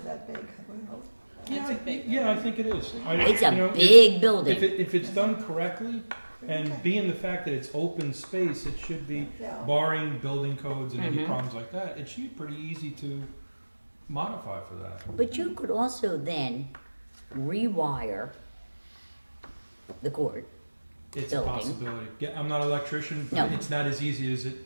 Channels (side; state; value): both; inverted; correlation -1.00